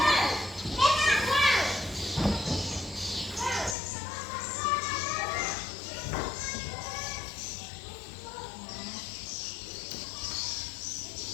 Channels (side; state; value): right; drops out; at 3.8 s